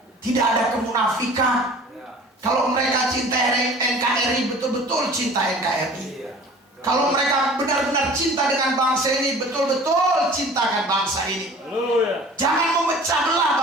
Tidak ada kemunafikan. Kalau mereka cinta NKRI, betul-betul cinta NKRI. Kalau mereka benar-benar cinta dengan bangsa ini, betul-betul cintakan bangsa ini. Jangan memecah belah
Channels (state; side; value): normal; both; correlation 0.45